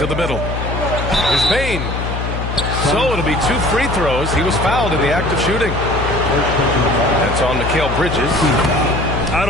the middle. Here's Bane. So it'll be 2 free throws. He was fouled in the act of shooting. That's on Mikal Bridges. I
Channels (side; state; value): left; noise; hum, 4 dB below the sound